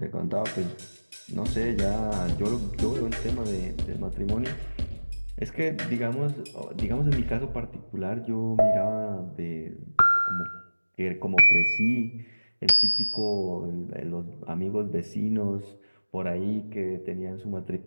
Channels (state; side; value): inverted; both; correlation -1.00